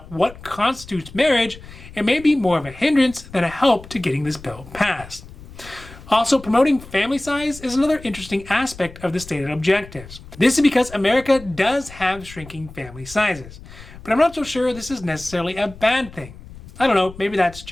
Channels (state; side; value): noise; left; rumble, 18 dB below the sound